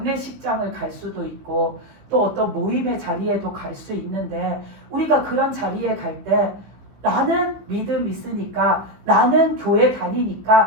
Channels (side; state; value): left; late; 15 ms